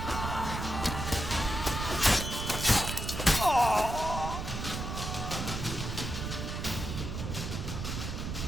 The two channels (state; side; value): noise; right; rumble, 4 dB below the sound